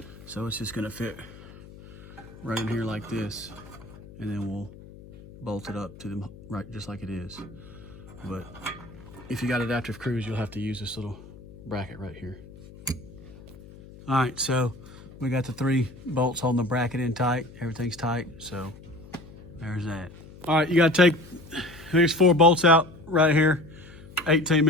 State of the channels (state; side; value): noise; left; hum, 18 dB below the sound